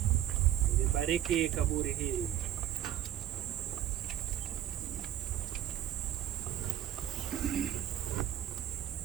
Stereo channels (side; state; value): left; quieter; 11.7 dB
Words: libariki kaburi hili.